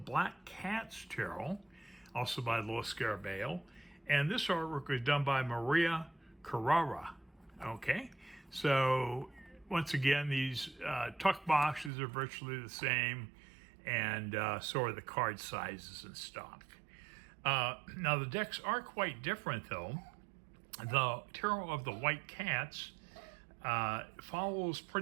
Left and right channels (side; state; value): left; drops out; at 11.9 s